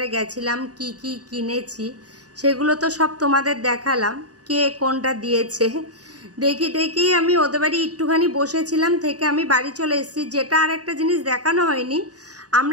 গেছিলাম, কি কি কিনেছি সেগুলো তো সব তোমাদের দেখালাম। কে কোনটা দিয়েছে দেখি আমি ওদের বাড়ি একটুখানি বসেছিলাম, থেকে আমি বাড়ি চলে এসেছি। যেটা আর একটা জিনিস দেখানো হয়নি,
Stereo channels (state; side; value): late; left; 0.68 ms